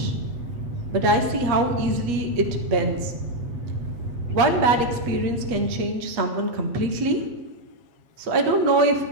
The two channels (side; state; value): left; late; 8.3 ms